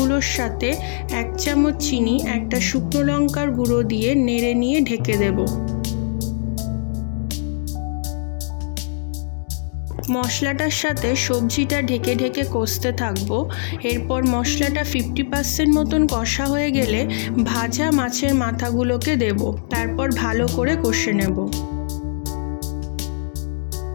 সাথে 1 চামচ চিনি, একটা শুকনো লঙ্কার গুঁড়ো দিয়ে নেড়ে নিয়ে ঢেকে দেব। মশলাটার সাথে সবজিটা ঢেকে ঢেকে কষতে থাকবো। এরপর মশলাটা 50% মতন কষা হয়ে গেলে ভাজা মাছের মাথাগুলোকে দেব, তারপর ভালো করে কষে নেব।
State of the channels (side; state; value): right; silent; digital silence